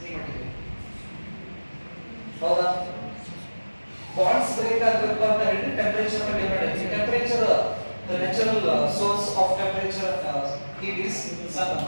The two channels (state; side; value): inverted; both; correlation -1.00